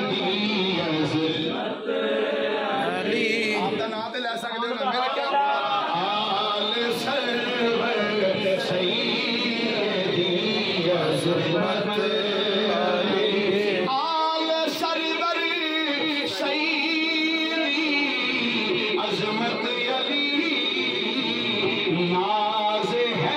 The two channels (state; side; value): identical; both; correlation 1.00